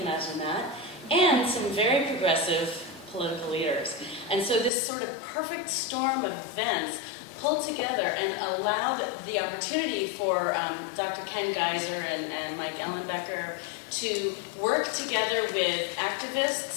imagine that, and some very progressive political leaders. And so this sort of perfect storm of events pulled together and allowed the opportunity for Dr. Ken Geiser and Mike Ellenbecker to work together with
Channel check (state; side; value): drops out; right; at 4.7 s